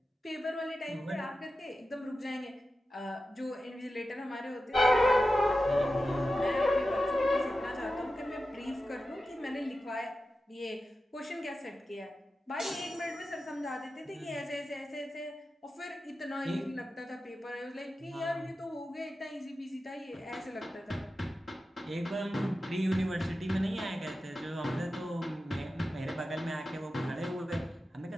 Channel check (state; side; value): normal; both; correlation 0.92